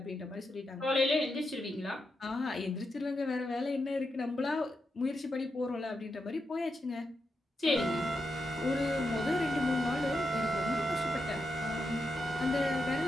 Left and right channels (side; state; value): both; normal; correlation 0.86